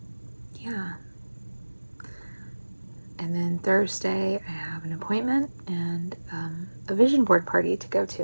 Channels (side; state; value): both; inverted; correlation -1.00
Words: And then Thursday, I have an appointment and a vision board party to go